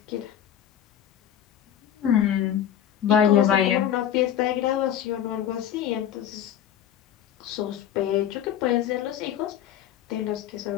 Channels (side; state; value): right; quieter; 10.3 dB